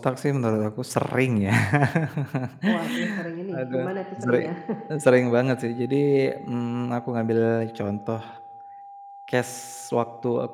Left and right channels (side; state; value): both; identical; correlation 1.00